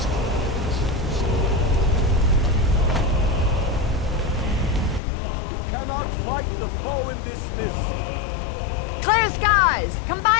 Cannot fight the foe in this mist. Clear skies!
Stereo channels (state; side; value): drops out; right; at 5.0 s